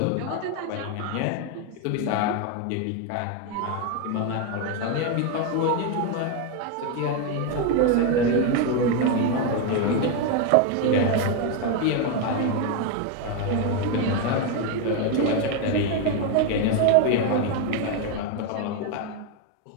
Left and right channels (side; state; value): both; different; correlation 0.02